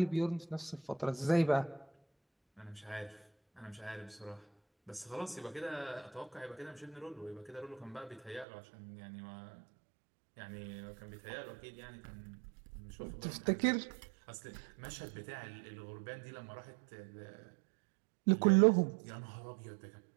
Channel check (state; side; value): drops out; left; at 8.5 s